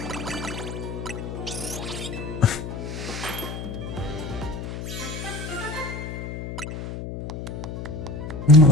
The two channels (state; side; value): noise; left; hum, 7 dB below the sound